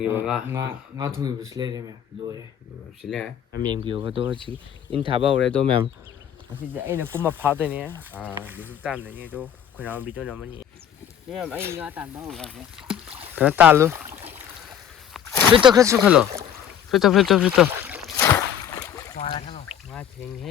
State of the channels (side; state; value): right; quieter; 9.2 dB